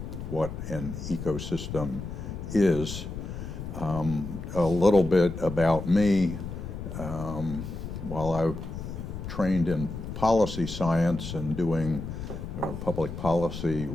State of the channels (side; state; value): left; noise; rumble, 7 dB below the sound